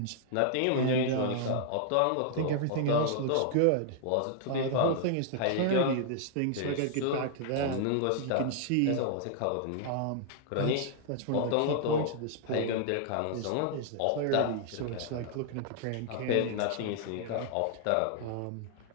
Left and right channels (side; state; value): both; different; correlation 0.00